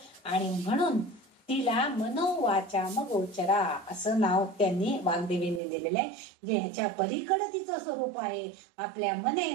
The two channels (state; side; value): drops out; left; at 5.6 s